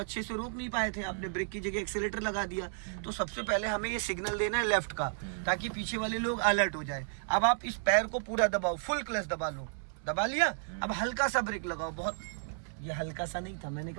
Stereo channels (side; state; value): left; silent; 56 dB below the other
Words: से रोक नहीं पाए थे, आपने ब्रेक की जगह एक्सेलेरेटर लगा दिया। तो सबसे पहले हमें ये सिग्नल देना है लेफ्ट का, ताकि पीछे वाले लोग अलर्ट हो जाए। अब आप इस पैर को पूरा दबाओ, फुल क्लच दबा लो, दबा लिया। अब हल्का सा ब्रेक लगाओ, बहुत, ये हल्का सा नहीं था, मैंने